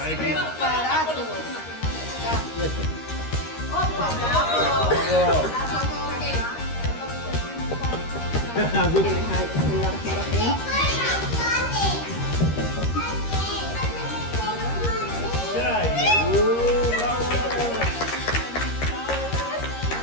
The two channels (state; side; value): late; right; 13 ms